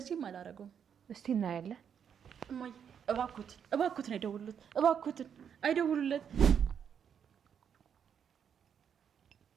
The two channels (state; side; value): quieter; left; 7.9 dB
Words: አላረገውም። እስቲ እናያለን። እማዬ እባክዎትን አይደውሉት፣ እባክዎትን አይደውሉለት።